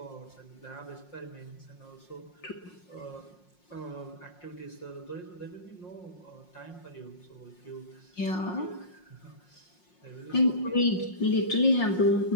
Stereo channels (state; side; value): late; right; 5.6 ms